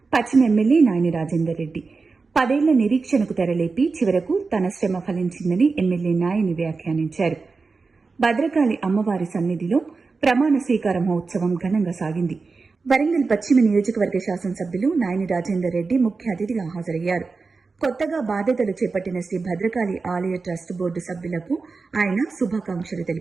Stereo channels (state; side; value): quieter; left; 4.3 dB